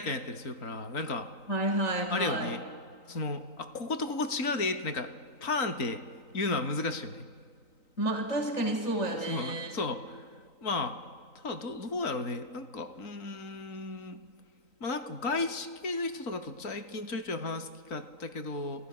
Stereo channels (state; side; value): late; right; 3.9 ms